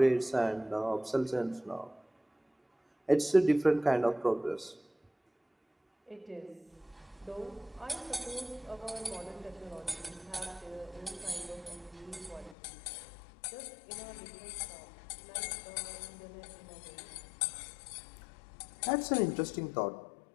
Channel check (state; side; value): drops out; right; at 12.6 s